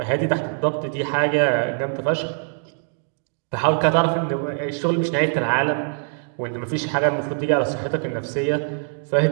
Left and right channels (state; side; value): silent; left; digital silence